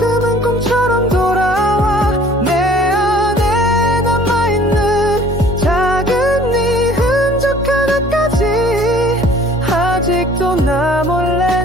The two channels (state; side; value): normal; both; correlation 0.52